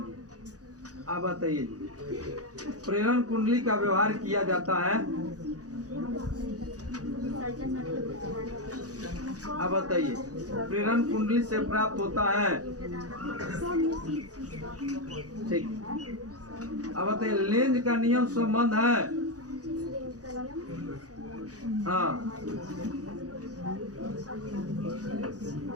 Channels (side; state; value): left; late; 0.67 ms